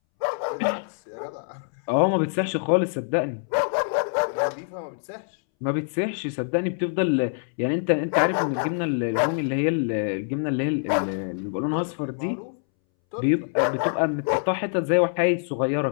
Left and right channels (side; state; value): right; silent; 62 dB below the other